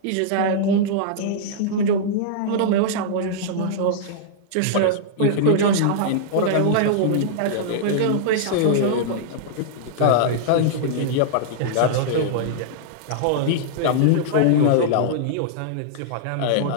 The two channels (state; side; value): different; both; correlation -0.02